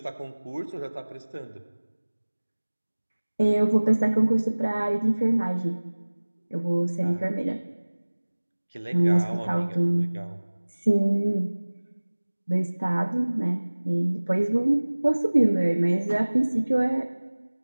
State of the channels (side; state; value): both; inverted; correlation -1.00